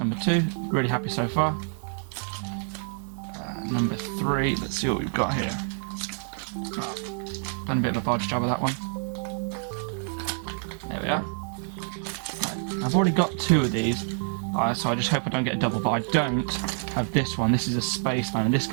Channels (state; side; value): silent; left; 60 dB below the other